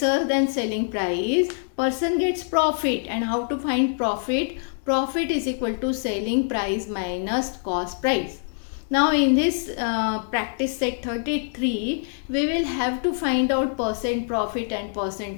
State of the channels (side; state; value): right; silent; 61 dB below the other